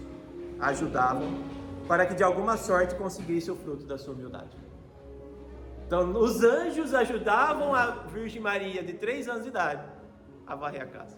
ajudavam para que de alguma sorte conseguisse o fruto da sua humildade. Então os anjos ajudavam a Virgem Maria de 3 anos de idade a varrer a casa.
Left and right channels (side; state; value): both; identical; correlation 1.00